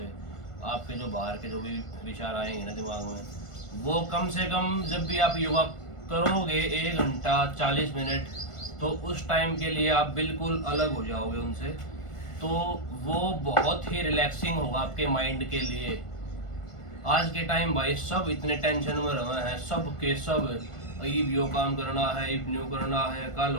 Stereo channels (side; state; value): right; late; 1.5 ms